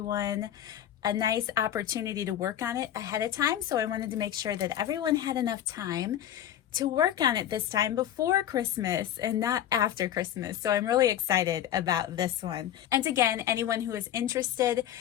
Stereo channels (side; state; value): right; quieter; 11.2 dB